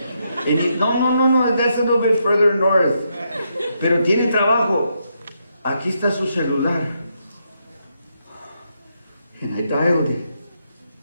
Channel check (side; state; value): both; inverted; correlation -0.80